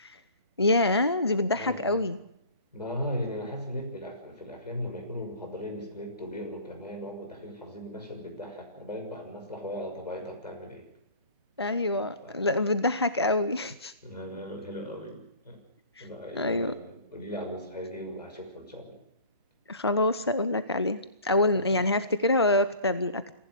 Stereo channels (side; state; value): both; inverted; correlation -0.44